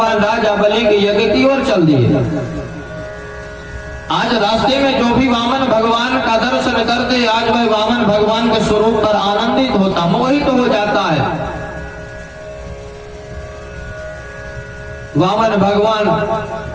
राजा बलि के यज्ञ की ओर चल दिए। आज रास्ते में जो भी वामन भगवान का दर्शन करते आज वह वामन भगवान के स्वरूप पर आनंदित होता, मोहित हो जाता है। वामन भगवान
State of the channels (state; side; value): identical; both; correlation 1.00